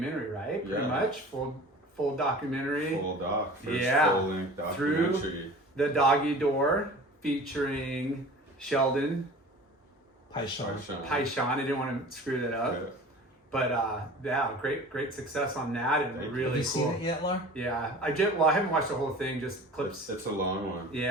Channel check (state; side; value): normal; both; correlation 0.41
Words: right? Pretty Yeah. much full documentary. Full doc. First Yeah. full-length Through- documentary. The Doggy Door, featuring Sheldon Paishon. Paishon. I didn't want to screw that up, Yeah. but yeah, great success on that, and Thank you. really Have you cool. seen it yet, Lar? Yeah, I haven't watched the whole thing, just clips. It's a long one.